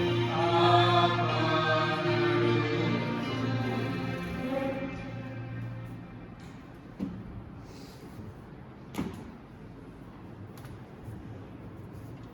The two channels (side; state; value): both; identical; correlation 1.00